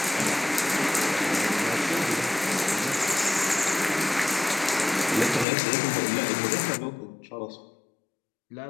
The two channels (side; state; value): right; drops out; at 5.5 s